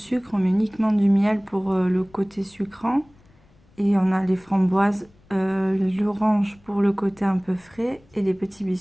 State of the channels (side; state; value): left; noise; rumble, 30 dB below the sound